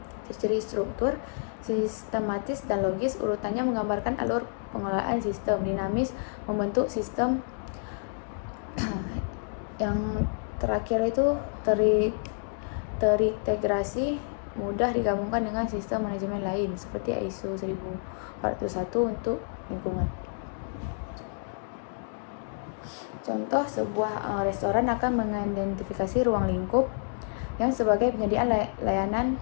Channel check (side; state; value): right; silent; digital silence